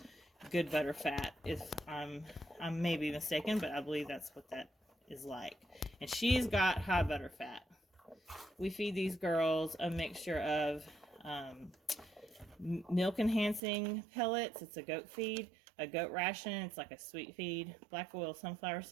good butter fat. If I may be mistaken, but I believe that's what that is like. And she's got high butter fat. We feed these girls a mixture of milk enhancing pellets. It's a goat feed, a goat ration. It's like a sweet feed, black oil sunflower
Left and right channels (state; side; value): drops out; left; at 13.6 s